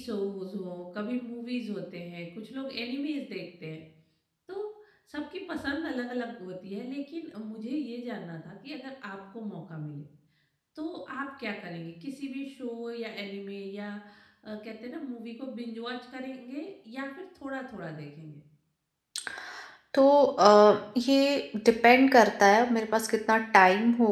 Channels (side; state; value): both; identical; correlation 1.00